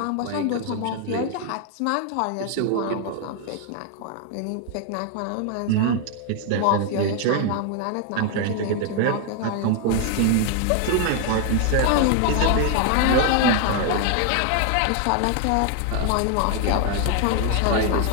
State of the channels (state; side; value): different; both; correlation 0.00